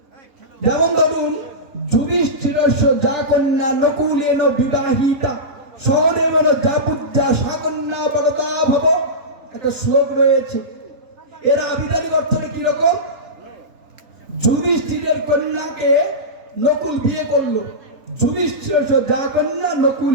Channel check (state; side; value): late; left; 3.4 ms